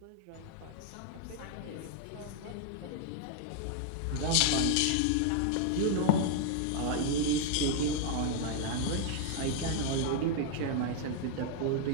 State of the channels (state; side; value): different; both; correlation 0.00